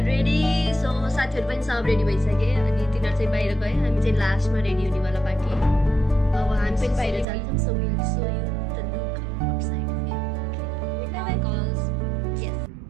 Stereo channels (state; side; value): drops out; left; at 7.2 s